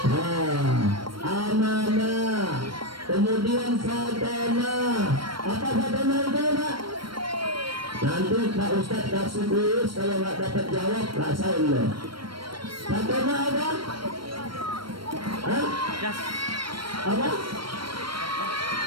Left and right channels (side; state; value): left; late; 0.73 ms